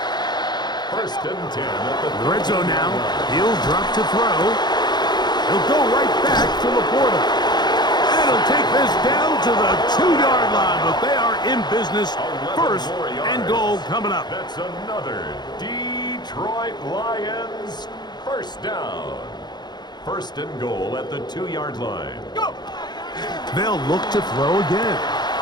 1st and 10 at the Red zone now. He'll drop to throw. He'll go right back to Laporta. And he'll take this down to the 2-yard line. But they are in business. 1st and goal coming up. That's another Detroit Lions 1st down. 1st and goal at the 2-yard line. Go! They'll look to throw again.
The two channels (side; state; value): right; late; 0.21 ms